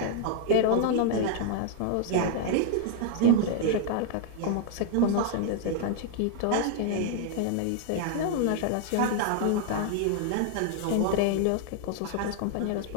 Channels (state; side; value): different; both; correlation 0.00